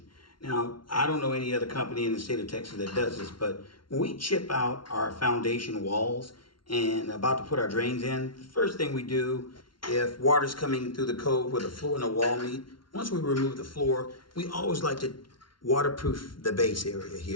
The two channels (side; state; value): right; late; 0.73 ms